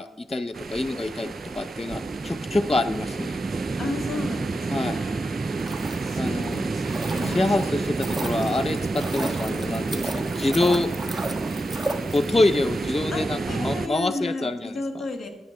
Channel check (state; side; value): normal; both; correlation 0.88